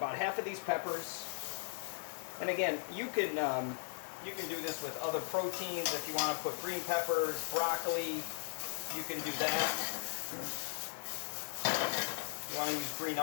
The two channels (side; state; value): right; silent; digital silence